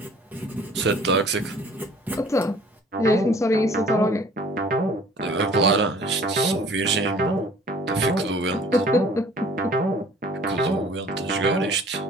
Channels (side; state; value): both; normal; correlation 0.52